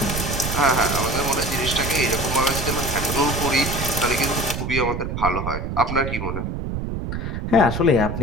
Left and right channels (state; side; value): noise; right; rumble, 4 dB below the sound